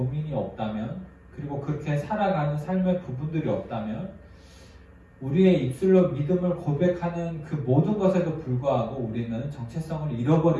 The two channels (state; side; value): identical; both; correlation 1.00